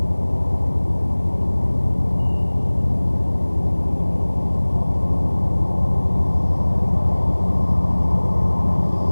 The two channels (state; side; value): inverted; both; correlation -1.00